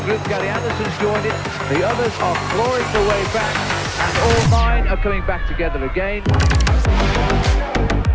group. Gary Anderson's joined it. The others are clawing their way back, and all 9 are coming back together again.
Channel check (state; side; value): identical; both; correlation 1.00